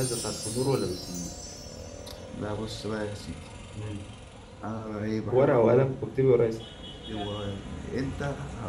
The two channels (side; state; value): both; identical; correlation 1.00